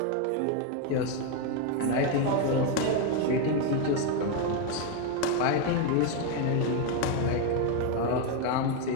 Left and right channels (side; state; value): both; different; correlation 0.02